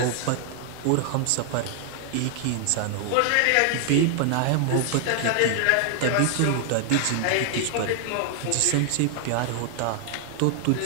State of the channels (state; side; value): different; both; correlation 0.00